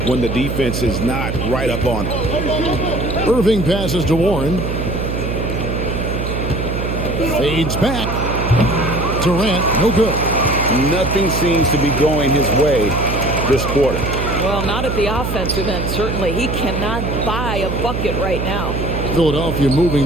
when the defense is not right up on it. Irving passes to Warren. Fades back. Durant, no good. Nothing seems to be going his way this quarter. Well, not at the offensive end, certainly. He cannot buy a bucket right now. Philadelphia moving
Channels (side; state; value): right; noise; hum, 3 dB below the sound